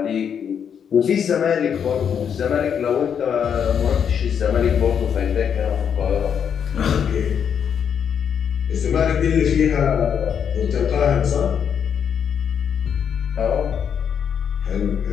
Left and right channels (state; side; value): quieter; right; 7.8 dB